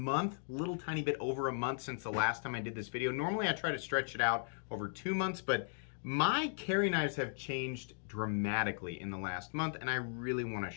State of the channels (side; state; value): right; silent; digital silence